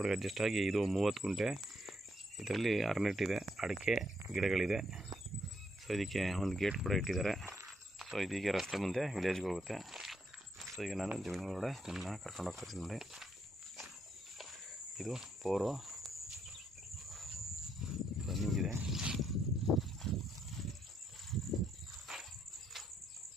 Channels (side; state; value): both; normal; correlation 0.76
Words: ಅಡ್ಜಸ್ಟ್ ಆಗಿ ಇದು 30 ಗುಂಟೆ. ಇದರಲ್ಲಿ ಅರ್ನೆಟ್ ಇದೆ, ಅಡಿಕೆ ಗಿಡಗಳಿದೆ. ಸೊ ಇದಕ್ಕೆ ಒಂದು ಗೇಟ್ ಕೂಡ ಇಟ್ಟಿದ್ದಾರೆ. ಸೊ ಇದೀಗ ರಸ್ತೆ ಮುಂದೆ ವಿಲೇಜ್ಗೆ ಹೋಗುತ್ತೆ. ಸೊ ಈಗ ನಾನು ಜಮೀನು ಒಳಗಡೆ ನಿಮ್ಮನ್ನ ಕರ್ಕೊಂಡು ಹೋಗ್ತೀನಿ ನೋಡಿ. ಇದು ಬೋರು ರನ್ನಿಂಗ್ ಇದೆ.